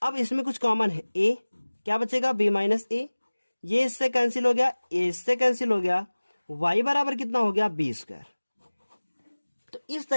अब इसमें कुछ कॉमन है, ए, क्या बचेगा, बी माइनस ए, ये इससे कैंसिल हो गया, ए इससे कैंसिल हो गया, y बराबर कितना हो गया, बी स्क्वायर। तो इस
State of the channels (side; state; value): both; inverted; correlation -1.00